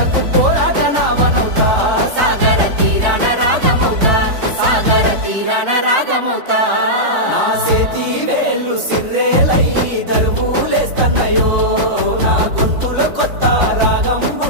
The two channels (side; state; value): left; late; 4.2 ms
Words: పోరాట నావనవుతా సాగర తీరాన రాగమవుతా సాగర తీరాన రాగమవుతా నా చేతి వేళ్ళు సిర్రేలై దరువులేస్తన్నాయో నా గొంతులో కొత్త రాగం